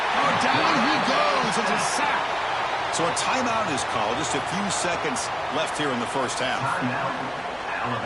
down he goes. It's a sack. So a timeout is called. Just a few seconds left here in the first half.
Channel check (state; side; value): identical; both; correlation 1.00